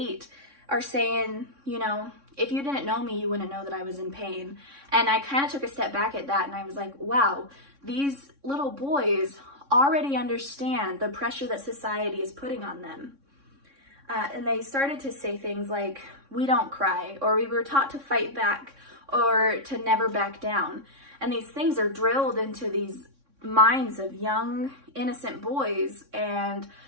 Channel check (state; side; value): late; left; 3.6 ms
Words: are saying, you know, if you didn't know me, you wouldn't know that I was in pain. And I kind of took a step back at that, and I was like, wow, these little boys already understand the pressure that society is putting on them. And they started to say things like, we don't cry, or we were taught to fight back, or to never back down. And these things are drilled into these minds of young, innocent boys, and